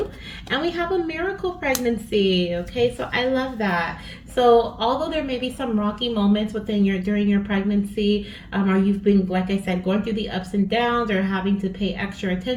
and we have a miracle pregnancy. Okay, so I love that. So although there may be some rocky moments during your pregnancy, or you've been, like I said, going through the ups and downs, or having to pay extra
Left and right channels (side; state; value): both; identical; correlation 1.00